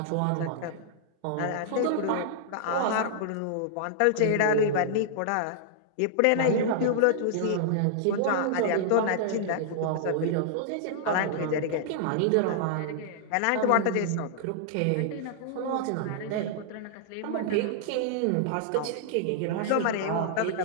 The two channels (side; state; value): both; different; correlation -0.01